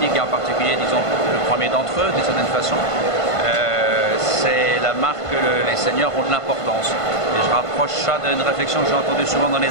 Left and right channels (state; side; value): late; right; 1.5 ms